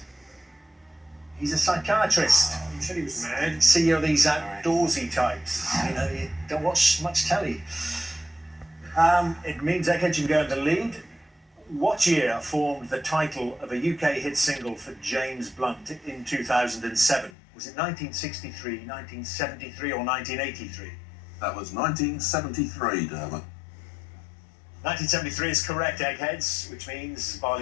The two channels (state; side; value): drops out; right; at 17.3 s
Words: He's a psychiatrist. You said he was mad. See, you're these outdoorsy types. You know, you don't watch much telly. It means Eggheads you can go in the lead. What year formed the title of a UK hit single for James Blunt in 2007? Was it 1963, 1973 or 1983? That was 1973, Dermot. 1973 is correct, Eggheads, which means,